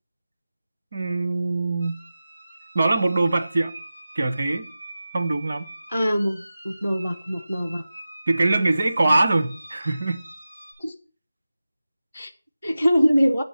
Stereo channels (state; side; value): inverted; both; correlation -0.95